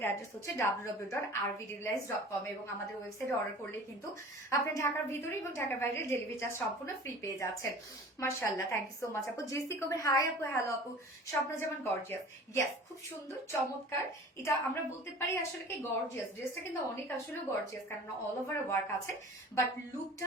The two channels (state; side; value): normal; both; correlation 0.42